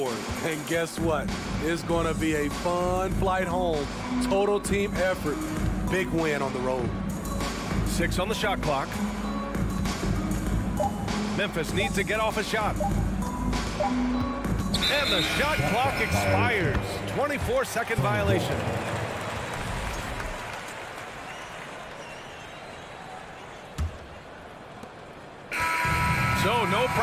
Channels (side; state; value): both; identical; correlation 1.00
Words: And guess what? It's going to be a fun flight home. Total team effort. Big win on the road. 6 on the shot clock. Memphis needs to get off a shot. And the shot clock expires. 24-second violation. So no